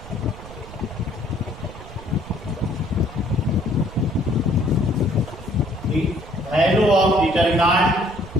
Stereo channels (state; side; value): noise; right; rumble, 15 dB below the sound